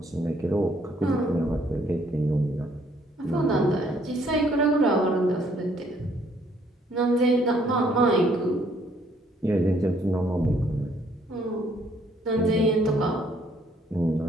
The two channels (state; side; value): normal; both; correlation 0.65